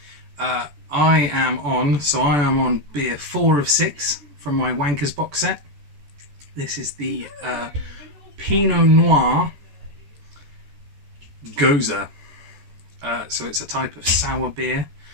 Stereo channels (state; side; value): late; left; 14 ms